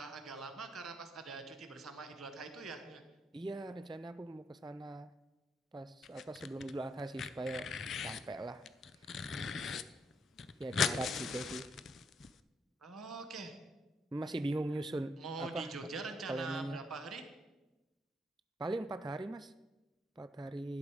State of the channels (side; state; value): both; normal; correlation 0.75